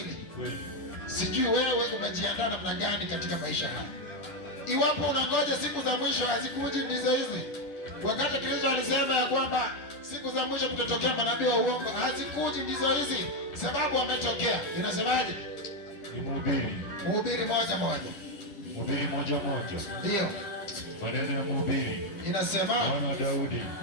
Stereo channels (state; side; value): late; right; 10 ms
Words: Sijui wewe umejiandaa namna gani katika maisha haya. Iwapo unangoja siku za mwisho hazikuji ndizo hizi. Wakati Kristo alisema ya kwamba siku za mwisho kutatokea manabii wa uongo, hazikuji ndizo hizi, sababu wametokea. Inasemaje? Ni Mhubiri 1:1. Mhubiri 1:1. Ndio. Maneno ya Mhubiri. Inasema